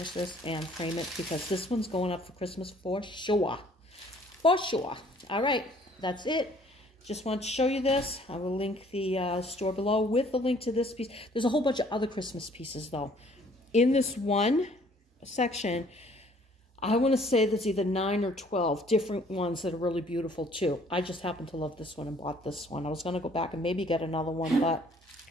this and frame it, because this one's going up for Christmas for sure. For sure. All right, that's it. Just want to show you this. I will link the store below with the link to this piece. There's a whole bunch of other Christmas pieces, though. In this one section, I want to say there's either 9 or 12 different ones that are really beautiful, too. I just happen to love this one and bought this one. I was going to go back and maybe get another one, but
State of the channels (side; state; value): both; normal; correlation 0.59